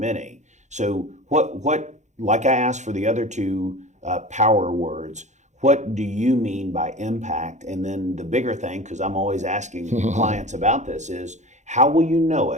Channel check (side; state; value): left; late; 0.34 ms